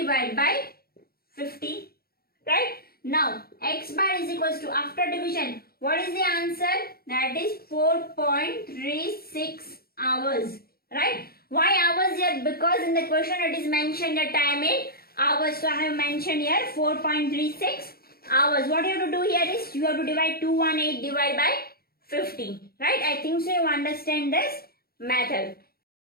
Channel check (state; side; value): late; right; 0.44 ms